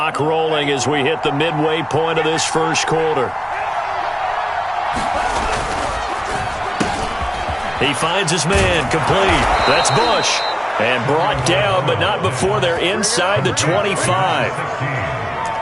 rolling as we hit the midway point of this first quarter. He finds his man, complete. That's Bush. And brought down, but not before they're inside the 25.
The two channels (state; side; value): identical; both; correlation 1.00